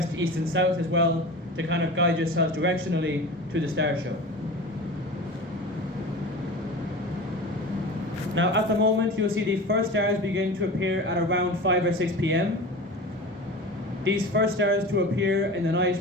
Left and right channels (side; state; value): both; normal; correlation 0.33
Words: east and south as well, to kind of guide yourself directionally to the star show. Now at the moment you'll see the first stars begin to appear at around 5 or 6 p.m. These first stars to appear in the